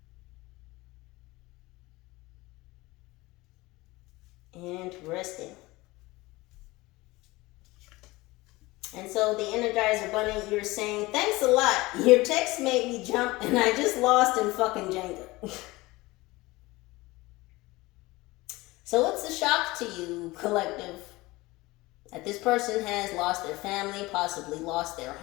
Interesting. And so the Energizer Bunny, you're saying, thanks a lot. Your text made me jump and I just lost in fucking Jenga. So it's a shock to you, collective, that this person has lost their family, possibly lost their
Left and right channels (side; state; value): right; quieter; 20.9 dB